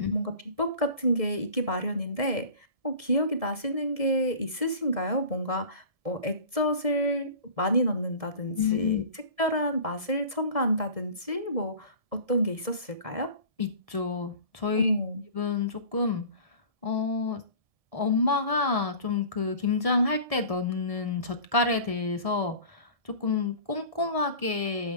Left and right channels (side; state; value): left; late; 1.7 ms